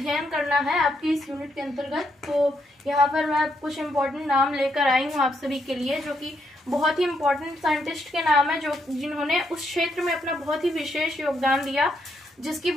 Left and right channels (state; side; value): normal; both; correlation 0.77